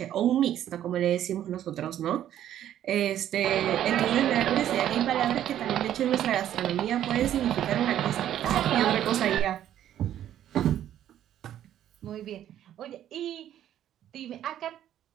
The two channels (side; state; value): left; quieter; 11.3 dB